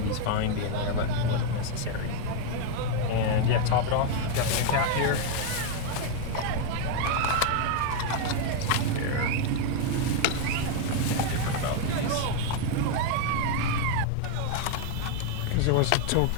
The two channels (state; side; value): different; both; correlation 0.01